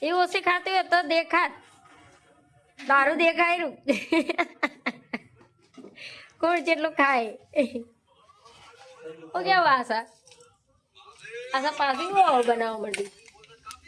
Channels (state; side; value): identical; both; correlation 1.00